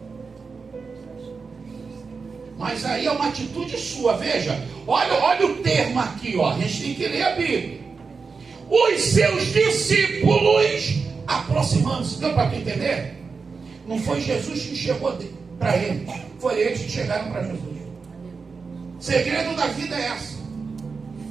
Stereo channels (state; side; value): quieter; left; 4.9 dB